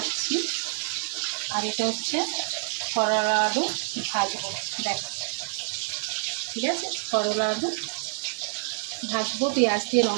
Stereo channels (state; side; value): silent; left; digital silence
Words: আর এটা হচ্ছে করলা আলু ভাজবো। দেখো, ঠিক আছে, করলা আলু ভাজবো পেঁয়াজ দিয়ে,